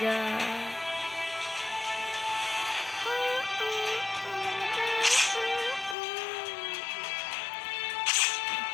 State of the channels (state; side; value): drops out; right; at 6.0 s